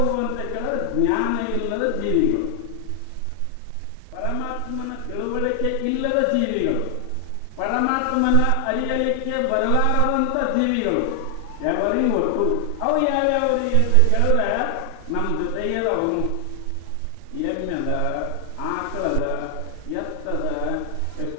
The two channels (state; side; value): different; both; correlation 0.00